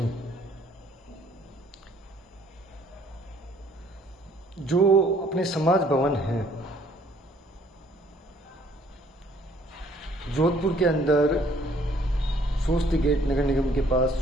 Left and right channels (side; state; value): both; normal; correlation 0.61